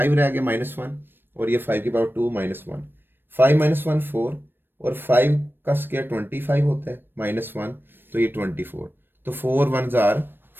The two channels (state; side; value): late; left; 0.097 ms